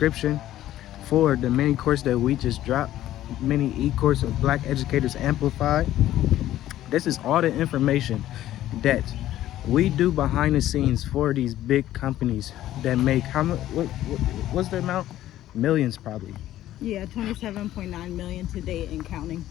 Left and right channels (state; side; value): quieter; right; 13.5 dB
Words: for the mini course that we just dropped, mini e-course of Black Educators Amplified. This is all the information that we do behind the scenes for these big companies that make, how much? What's the amount? Millions, probably. Yeah, 27.9 million to date and counting.